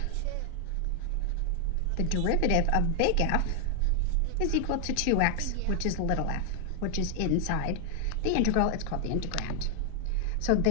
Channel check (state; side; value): different; both; correlation 0.00